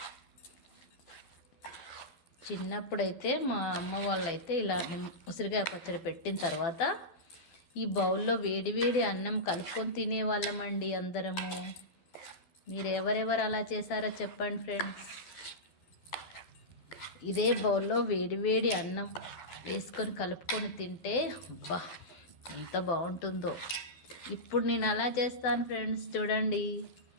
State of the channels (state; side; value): late; right; 12 ms